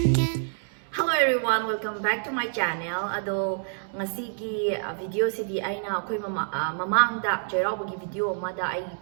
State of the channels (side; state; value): left; silent; digital silence